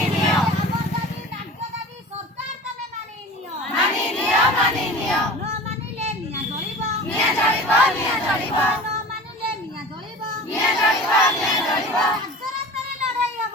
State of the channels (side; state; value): both; normal; correlation 0.38